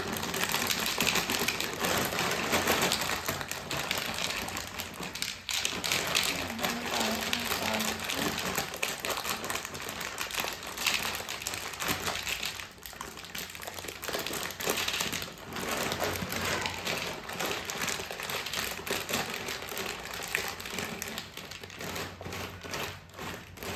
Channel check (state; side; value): identical; both; correlation 1.00